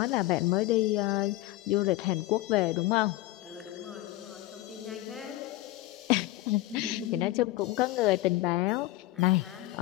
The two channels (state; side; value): quieter; right; 17.1 dB